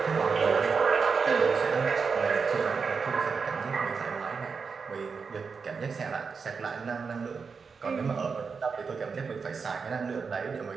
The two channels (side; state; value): left; quieter; 5.3 dB